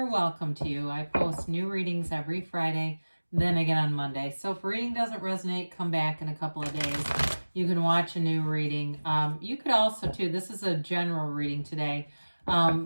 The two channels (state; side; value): inverted; both; correlation -1.00